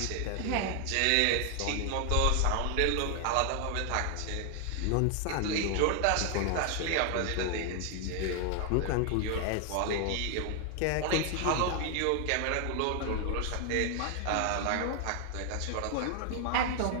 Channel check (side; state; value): both; different; correlation 0.00